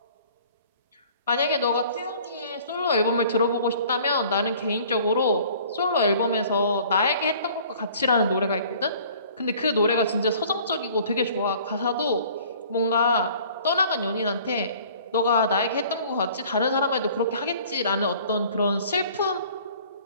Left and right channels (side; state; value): both; inverted; correlation -0.52